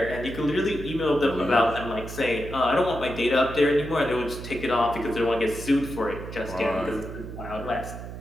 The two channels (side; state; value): right; noise; hum, 10 dB below the sound